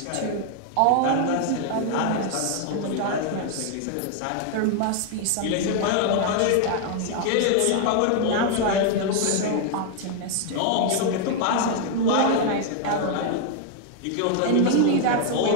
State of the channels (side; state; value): both; different; correlation 0.00